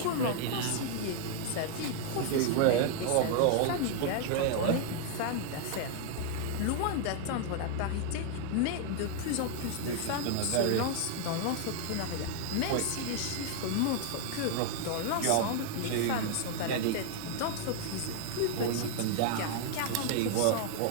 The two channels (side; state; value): both; different; correlation 0.00